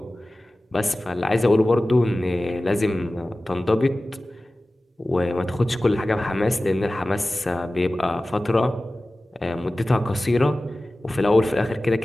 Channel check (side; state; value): both; normal; correlation 0.96